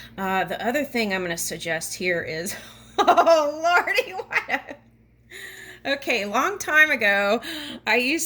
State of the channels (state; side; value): identical; both; correlation 1.00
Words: the other thing I'm going to suggest here is, oh, Lordy, what? Okay, long time ago, I